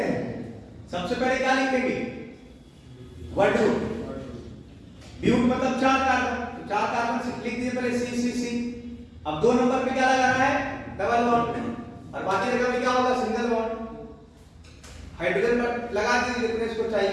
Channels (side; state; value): both; identical; correlation 1.00